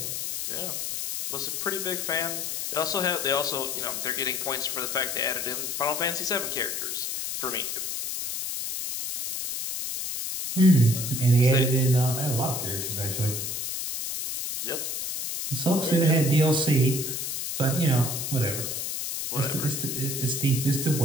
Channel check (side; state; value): left; noise; hiss, 3 dB below the sound